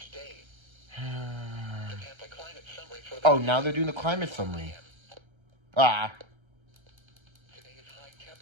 Oh, now they're doing the climate summary. Ah. Today's high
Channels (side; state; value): left; late; 1.3 ms